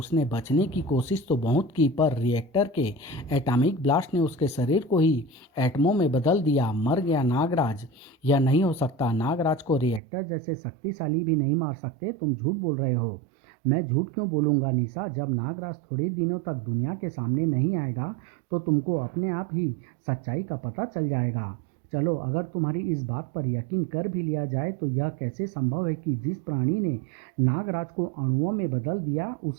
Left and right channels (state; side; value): drops out; left; at 10.0 s